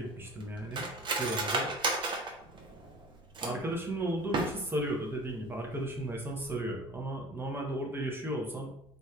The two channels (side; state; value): both; normal; correlation 0.40